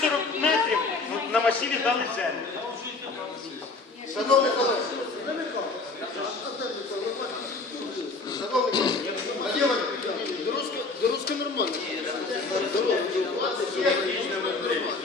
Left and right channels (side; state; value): right; quieter; 3.8 dB